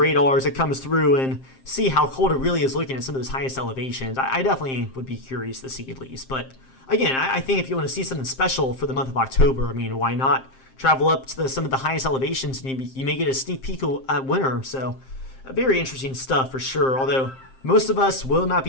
as it comes through and see how cold it really is looking at some of those highest elevations. I definitely would be curious to see at least. But again, I think if you want to see something special for the month of October, I mean, why not travel up to some of the highest elevations, and you may get a sneak peek at winter. So very interesting stuff for sure, although most of us will not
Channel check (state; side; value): late; right; 7.6 ms